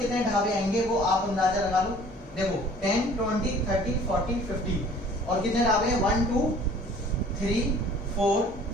ढाबे आएंगे वो आप अंदाजा लगा लो। देखो 10 20 30 40 50 और कितने ढाबे हैं 1 2 3 4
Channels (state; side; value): normal; both; correlation 0.52